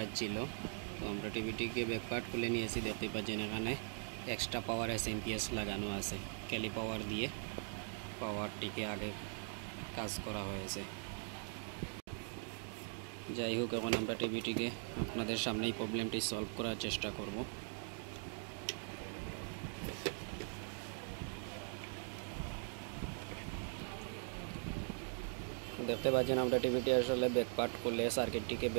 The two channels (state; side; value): silent; left; 50 dB below the other